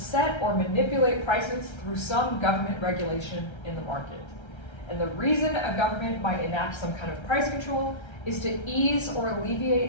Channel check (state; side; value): late; right; 1.3 ms